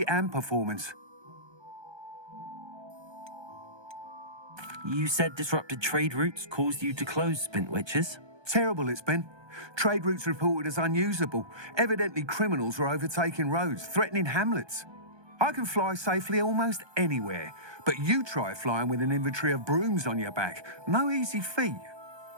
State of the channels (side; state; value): left; late; 1.2 ms